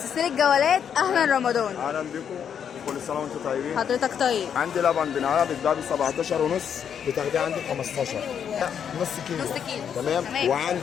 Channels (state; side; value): quieter; right; 8.1 dB